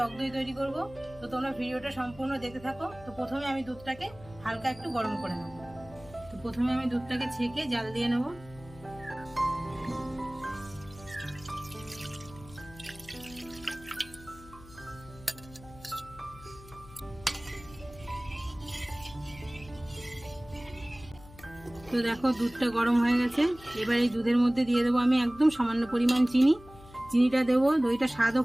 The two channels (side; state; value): left; noise; hum, 20 dB below the sound